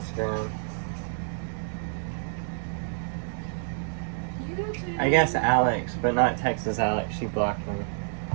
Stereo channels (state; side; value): silent; left; digital silence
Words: YouTube. I guess Alex, but not Texas Alex. She blocked me.